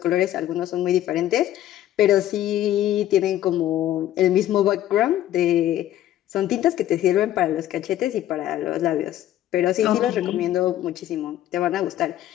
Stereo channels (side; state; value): right; quieter; 12.8 dB